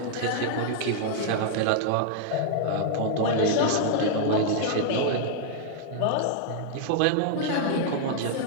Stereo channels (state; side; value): different; both; correlation -0.01